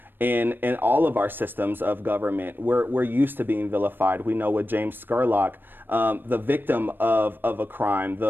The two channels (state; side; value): late; left; 0.095 ms